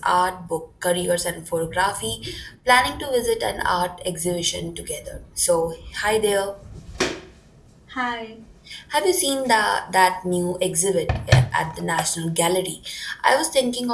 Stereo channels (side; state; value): both; identical; correlation 1.00